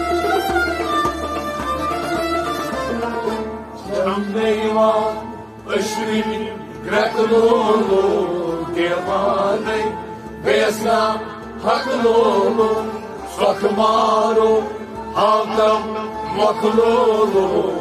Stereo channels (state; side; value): identical; both; correlation 1.00